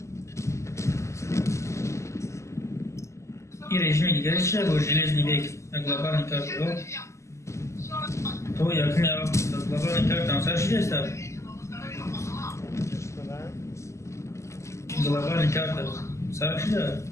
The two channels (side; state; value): right; late; 0.14 ms